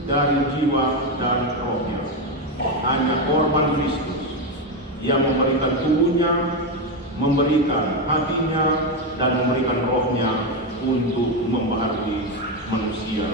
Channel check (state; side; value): normal; both; correlation 0.09